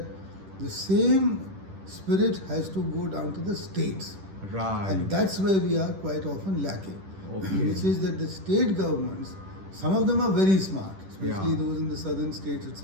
the same spirit has to go down to the states. Right. And that's where we are quite often lacking. Okay. Which is that the state governments, some of them are very smart, especially those in the southern states,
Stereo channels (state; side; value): late; left; 10 ms